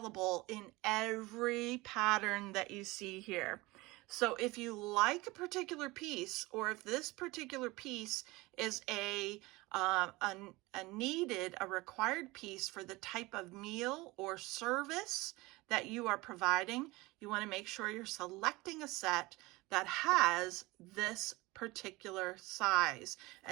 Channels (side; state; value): left; quieter; 21.8 dB